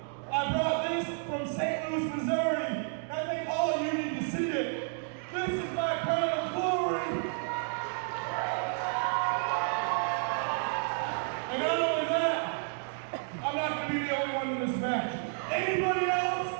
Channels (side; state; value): left; silent; 56 dB below the other